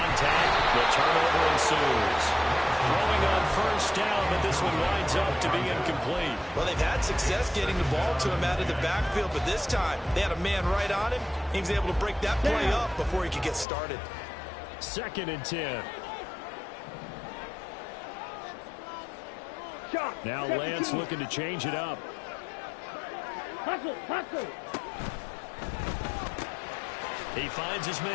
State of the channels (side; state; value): right; drops out; at 13.7 s